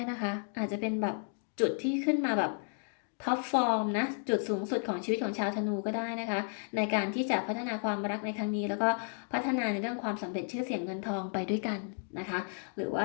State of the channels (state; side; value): silent; right; 56 dB below the other